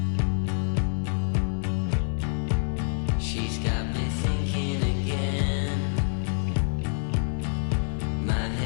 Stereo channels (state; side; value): silent; right; 57 dB below the other